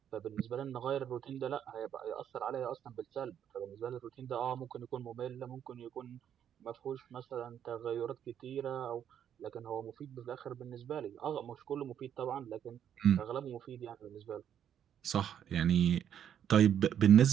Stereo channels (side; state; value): left; quieter; 9.4 dB